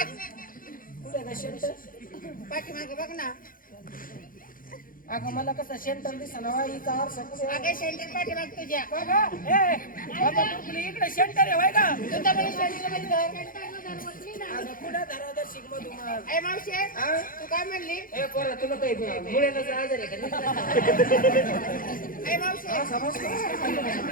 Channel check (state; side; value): late; right; 0.40 ms